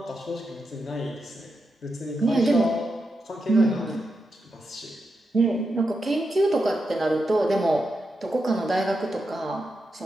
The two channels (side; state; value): both; normal; correlation 0.86